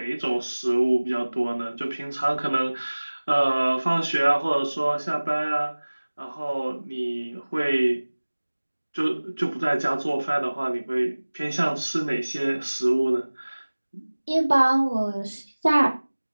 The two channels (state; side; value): inverted; both; correlation -1.00